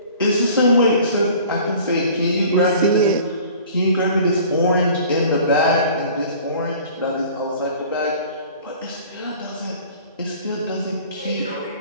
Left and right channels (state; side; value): inverted; both; correlation -0.47